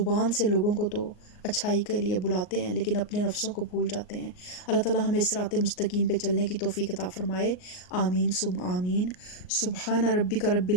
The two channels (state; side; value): late; right; 38 ms